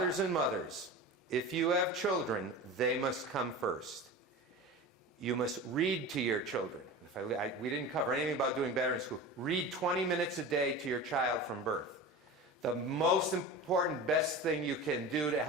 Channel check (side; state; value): both; normal; correlation 0.31